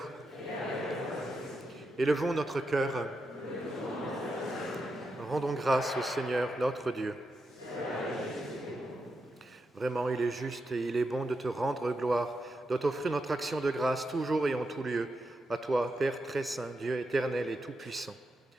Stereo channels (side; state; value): both; normal; correlation 0.86